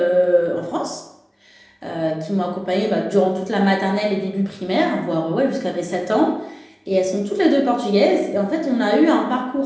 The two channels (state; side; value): identical; both; correlation 1.00